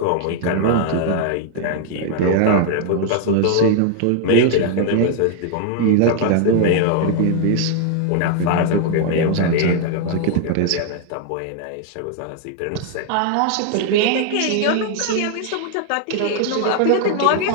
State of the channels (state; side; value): different; both; correlation 0.00